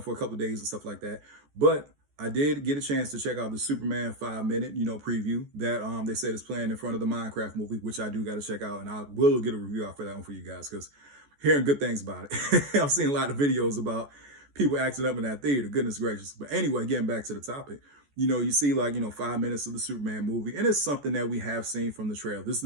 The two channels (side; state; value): left; late; 14 ms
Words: a couple of days and stuff like that. But I did get a chance to check out the Superman 5 minute, preview that they said is playing in front of the Minecraft movie, which I do got to check out, and I will get a review out for that one for you guys because hearing good things about it. I've seen a lot of videos about people acting up in that theater. Goodness gracious. But anyway, getting back to the topic, you see 5 minutes of the Superman movie, and it's something that we have seen from the trailer. This is